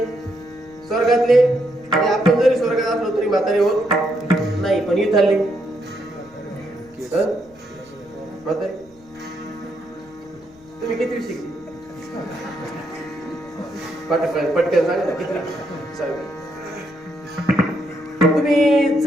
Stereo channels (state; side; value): noise; left; rumble, 28 dB below the sound